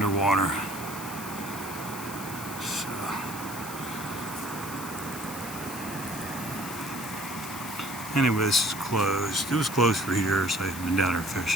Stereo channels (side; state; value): left; noise; hiss, 10 dB below the sound